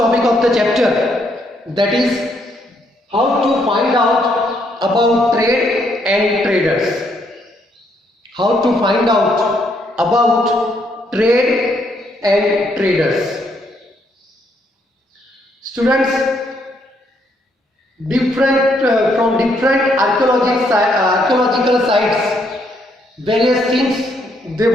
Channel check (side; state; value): both; normal; correlation 0.73